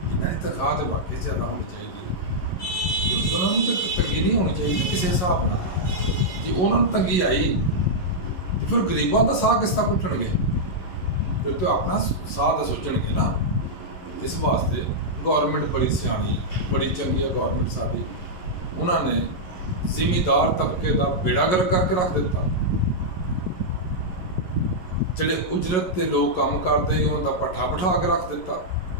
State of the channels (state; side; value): late; right; 11 ms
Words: इन्होंने तनख्वाह तो वाकई ज़्यादा होनी चाहिए, क्योंकि उन्होंने तो तंगी नहीं होनी चाहिए किसी हिसाब न। जी उन्होंने तंगी आई तो फिर गरीबों का साह किस तरह घुटणगे? फिर तो अपना साह तो सोचणगे ना। इस वास्ते गौरमेंट बड़ी सियाणी, बड़ी चंगी है गौरमेंट साडी। उन्होंने जिमीदार तबके का बेड़ा गर्क करके रख दिता। जिहड़े उजरत ते लोग काम करते उन्होंने पट्ठा बिठा के रख दिता।